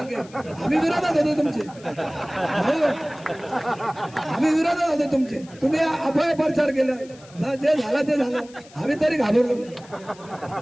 आम्ही विरोधात होतो तुमचे, आम्ही विरोधात होतो तुमचे, तुम्ही अभय प्रचार केला, जे झालं ते झालं, आम्ही तरी घाबरलो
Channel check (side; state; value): left; noise; hiss, 23 dB below the sound